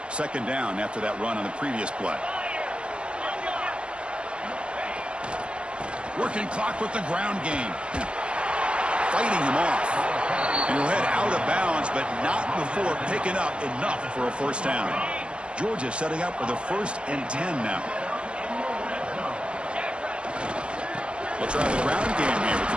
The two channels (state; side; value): late; left; 0.052 ms